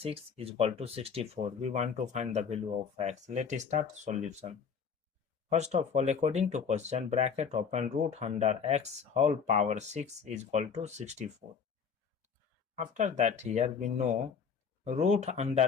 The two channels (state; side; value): quieter; right; 6.2 dB